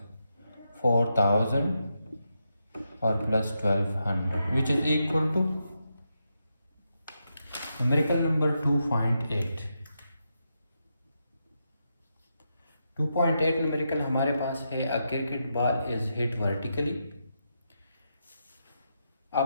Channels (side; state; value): both; inverted; correlation -0.85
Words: 4000 और plus 1200 which is equal to numerical number 2.8 numerical हमारे पास है, a cricket ball is hit vertically